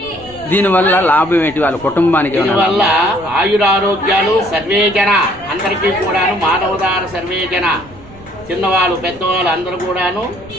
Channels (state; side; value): noise; right; rumble, 21 dB below the sound